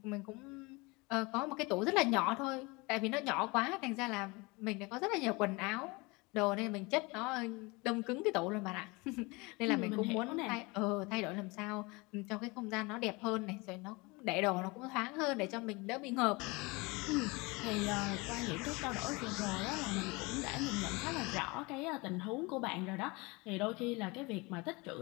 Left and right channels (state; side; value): quieter; right; 25.7 dB